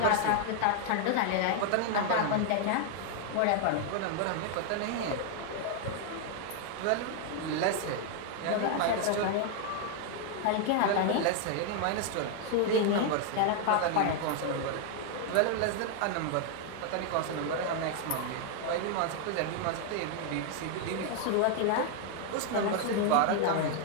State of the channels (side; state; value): both; different; correlation 0.00